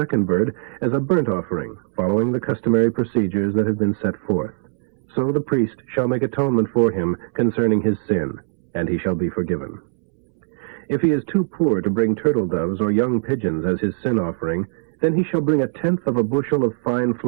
bird as a burnt offering, following the customary procedures that have been set forth. So the priest shall make atonement for him concerning his sin, and he shall be forgiven. If he is too poor to bring turtle doves or young pigeons as his sin offering, then he shall bring 1/10 of a bushel of fine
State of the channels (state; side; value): silent; left; 65 dB below the other